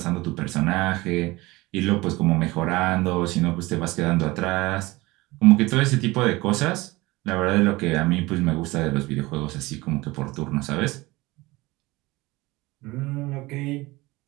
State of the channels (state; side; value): quieter; left; 21.1 dB